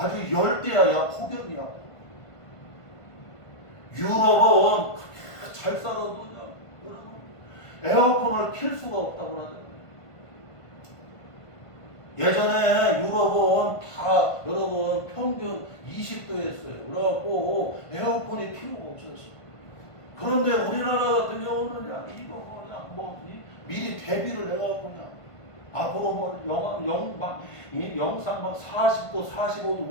열대야. 야 폭염이야. 유럽은 잘 살아도 여러분 에어컨을 킬 수가 없다고 그러잖아요. 예전에 유럽은 다 여러분 평균 20도였어요. 그래갖고 에어컨이 필요가 없었어요. 그런데 우리나라 같은 경우는 그냥 이거 그냥 뭐 미리 대비를 해갖고 그냥 앞으로 뭐 영상 막 40도,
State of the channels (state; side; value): late; right; 1.5 ms